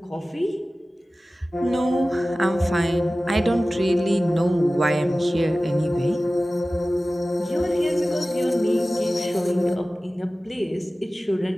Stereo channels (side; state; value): both; normal; correlation 0.96